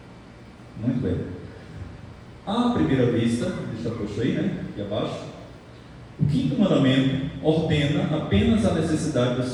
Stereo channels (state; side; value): identical; both; correlation 1.00